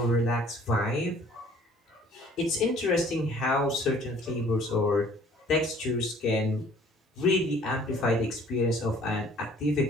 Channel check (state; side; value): normal; both; correlation 0.55